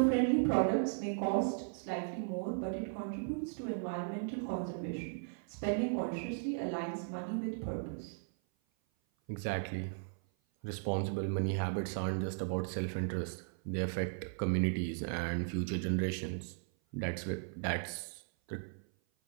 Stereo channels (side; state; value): left; silent; 53 dB below the other